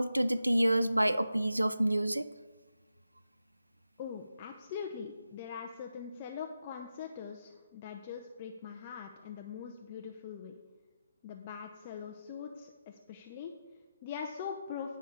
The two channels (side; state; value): both; inverted; correlation -0.91